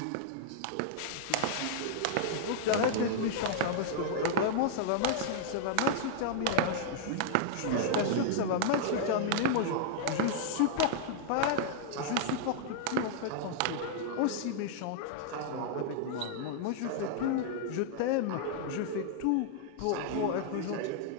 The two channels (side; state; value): both; different; correlation -0.01